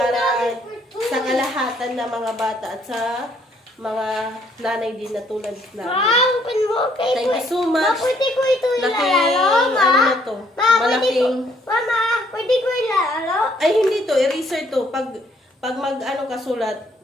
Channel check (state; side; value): normal; both; correlation 0.66